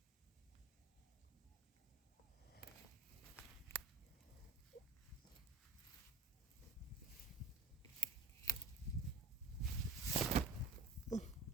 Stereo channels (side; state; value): left; quieter; 3.4 dB